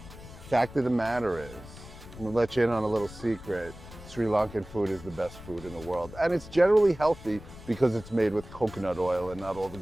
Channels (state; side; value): noise; left; rumble, 16 dB below the sound